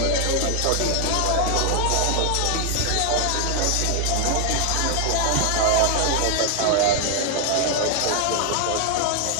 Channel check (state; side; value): different; both; correlation 0.01